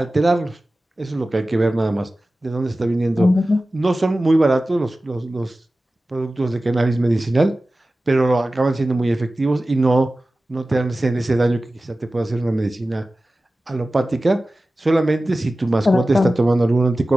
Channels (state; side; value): normal; both; correlation 0.96